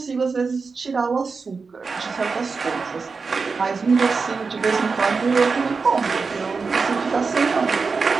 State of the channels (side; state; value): left; quieter; 4.7 dB